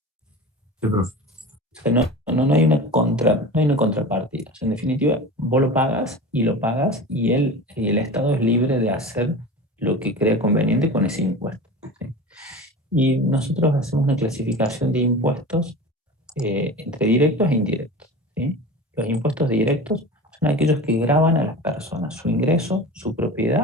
Sí, profe. O sea, no hay una contrapartida. O sea, en definitiva, vos lo pagas y el Estado es libre de hacer lo que crea conveniente con ese impuesto, ¿sí? Y nosotros hacemos una clasificación de impuestos entre directos e indirectos, ¿sí? Los impuestos directos son aquellos que gravan a las personas, su ingreso, su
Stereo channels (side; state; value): both; normal; correlation 0.33